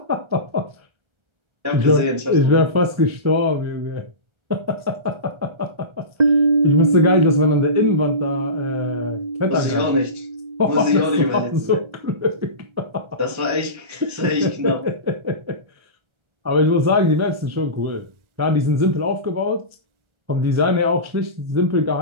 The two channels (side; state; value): left; late; 1.3 ms